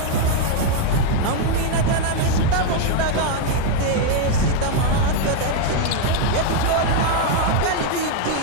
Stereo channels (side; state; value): both; different; correlation 0.00